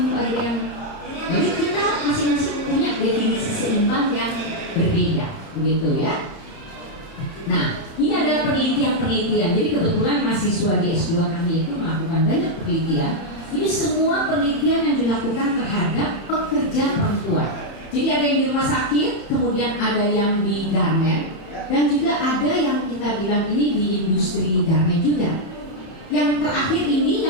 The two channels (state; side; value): late; right; 31 ms